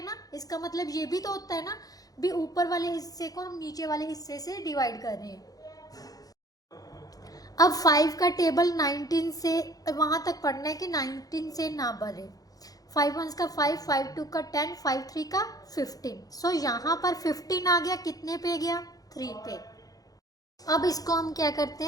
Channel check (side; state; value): right; late; 0.18 ms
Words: ना, इसका मतलब ये भी तो होता है ना भी ऊपर वाले हिस्से को हम नीचे वाले हिस्से से डिवाइड कर रहे हैं। अब 5 का टेबल 19 से वहाँ तक पढ़ना है कि 19 से ना बढ़े, 5 1 का 5, 5 2 का 10, 5 3 का 15, सो यहाँ पर 15 आ गया, कितने पे गया, 3 पे। अब इसको हम क्या करते